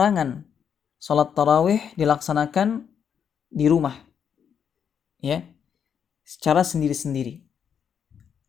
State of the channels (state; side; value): quieter; right; 7.7 dB